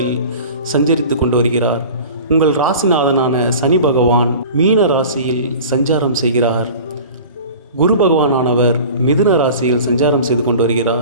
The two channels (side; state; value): both; inverted; correlation -0.40